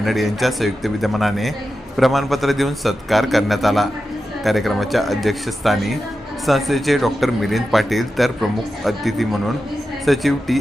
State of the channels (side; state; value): both; normal; correlation 0.91